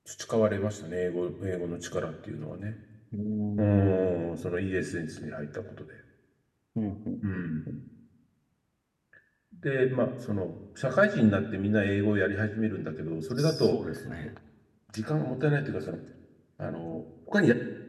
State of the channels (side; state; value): both; identical; correlation 1.00